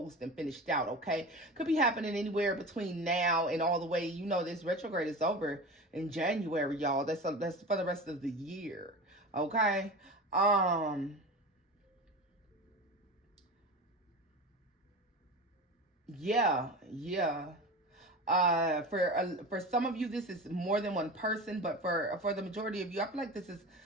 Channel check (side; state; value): both; normal; correlation 0.30